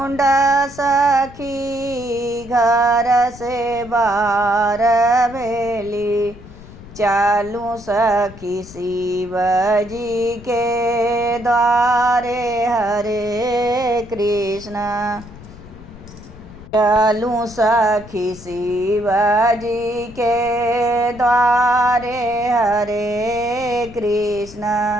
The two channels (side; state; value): left; noise; rumble, 18 dB below the sound